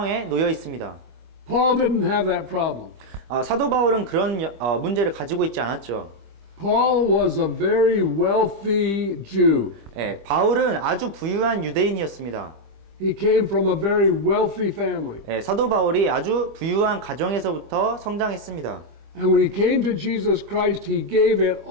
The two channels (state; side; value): late; left; 25 ms